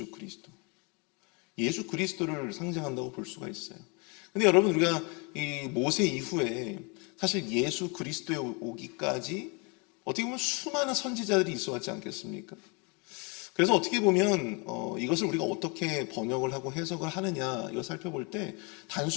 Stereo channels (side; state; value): right; quieter; 31.6 dB